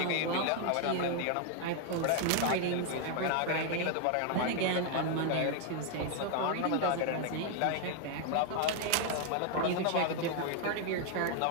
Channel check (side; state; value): both; different; correlation 0.01